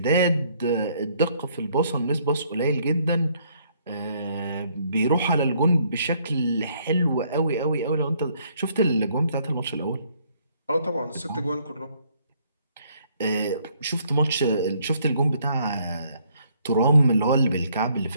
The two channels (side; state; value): both; inverted; correlation -0.66